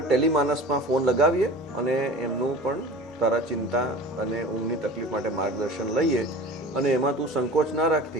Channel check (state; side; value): normal; both; correlation 0.38